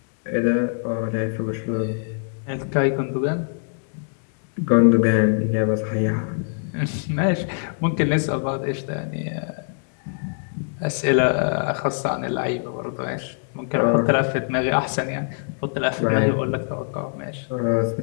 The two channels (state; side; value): silent; right; digital silence